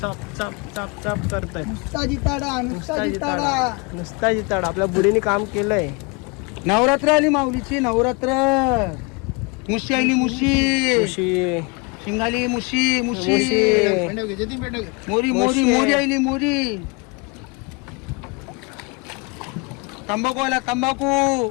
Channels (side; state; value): right; quieter; 29.2 dB